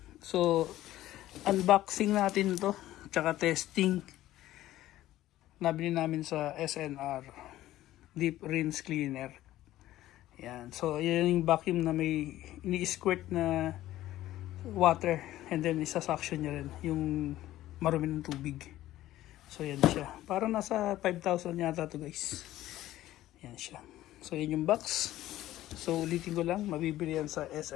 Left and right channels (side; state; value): right; quieter; 14.7 dB